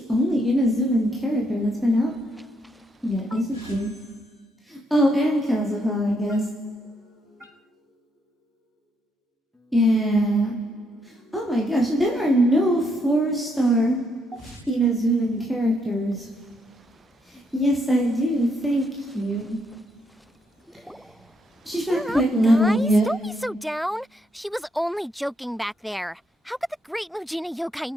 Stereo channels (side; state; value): both; normal; correlation 0.75